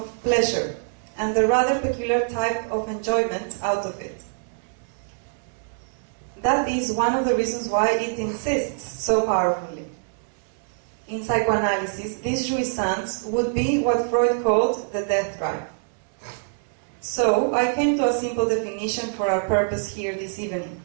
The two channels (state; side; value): silent; left; 62 dB below the other